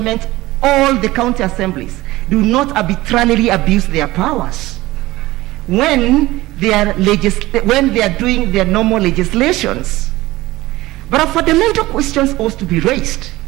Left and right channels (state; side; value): quieter; left; 18.4 dB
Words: or the county assemblies do not arbitrarily abuse their powers when they are doing their normal legislations. But a fundamental question ought to be raised,